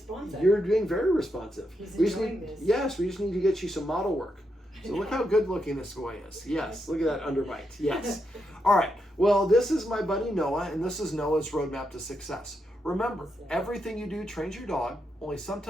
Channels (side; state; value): both; normal; correlation 0.83